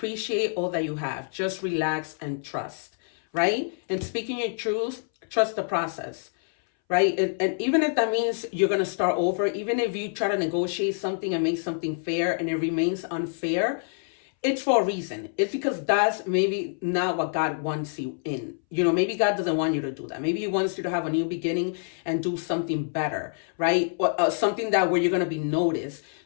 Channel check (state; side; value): silent; right; 61 dB below the other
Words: all that you have. Just relax and trust, right? And speaking your truth, trust the process, right? And even if that means you're going to start over, even if you try to negotiate something and make something fair and it remains unfair, it's for a reason. It's because that's maybe not what God wants you in. Maybe God doesn't want you to do that. Maybe He wants you to have a new beginning and do something better, right? Or something where you're going to be noticed,